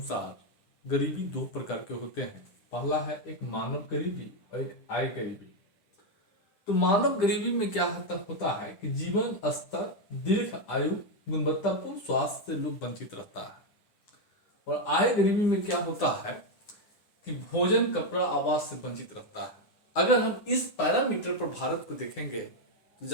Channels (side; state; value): right; late; 10 ms